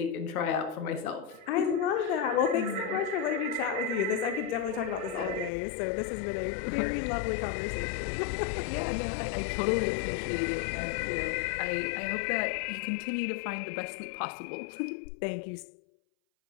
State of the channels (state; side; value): drops out; right; at 5.5 s